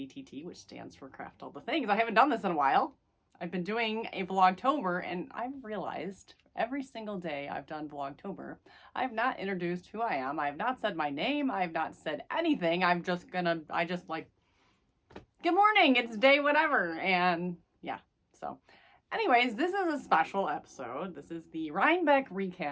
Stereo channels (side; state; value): both; identical; correlation 1.00